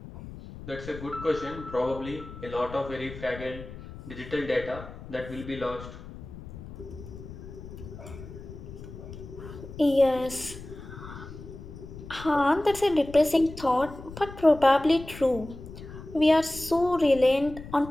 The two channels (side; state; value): left; noise; rumble, 13 dB below the sound